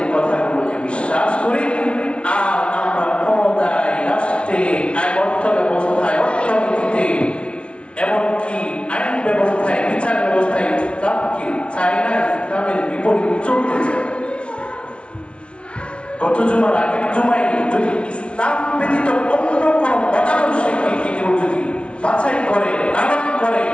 কথাগুলোকে বিশ্বাস করি। আর আমরা ক্ষমতায়, রাষ্ট্রে, অর্থ ব্যবস্থায়, অর্থনীতিতে, এমনকি আইন ব্যবস্থায়, বিচার ব্যবস্থায় ইসলামকে চাই না, ইসলামের বিপরীত চলতে চাই। গত জুমার আগের জুমায় যদি ইসলাম ব্যতীত অন্য কোন মতাদর্শকে কেউ যদি বাছাই করে, লালন করে,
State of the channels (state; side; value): late; right; 0.059 ms